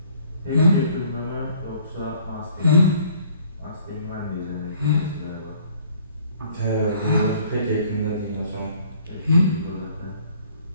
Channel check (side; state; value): both; inverted; correlation -0.57